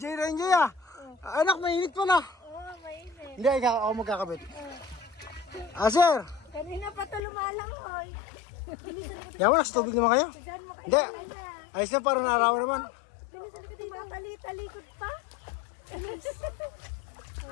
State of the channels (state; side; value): drops out; right; at 7.2 s